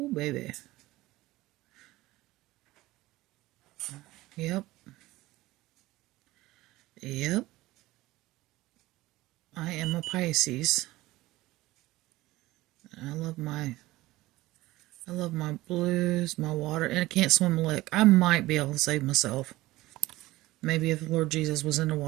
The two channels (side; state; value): left; quieter; 18.2 dB